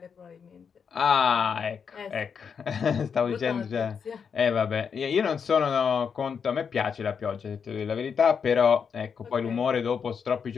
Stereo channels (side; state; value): right; quieter; 6.6 dB